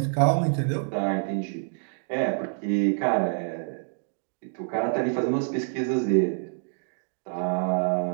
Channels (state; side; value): silent; left; digital silence